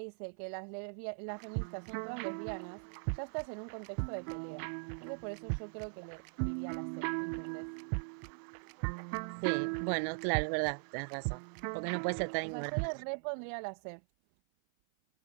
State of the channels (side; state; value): left; silent; 51 dB below the other